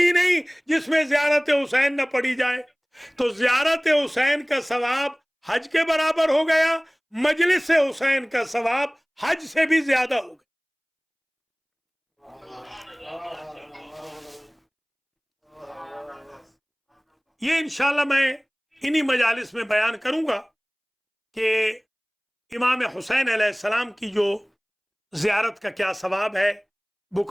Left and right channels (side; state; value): both; identical; correlation 1.00